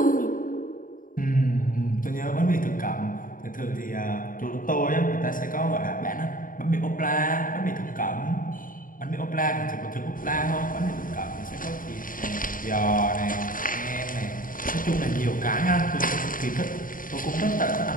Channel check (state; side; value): late; right; 0.40 ms